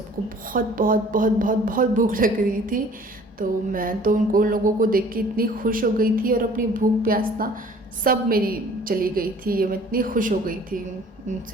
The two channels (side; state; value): both; normal; correlation 0.52